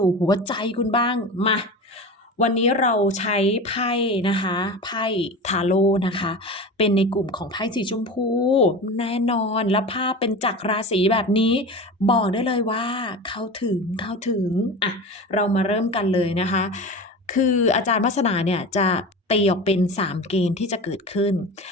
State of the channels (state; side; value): normal; both; correlation 0.30